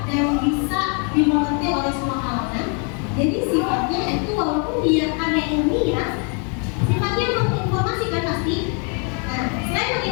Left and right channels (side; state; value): right; quieter; 38.3 dB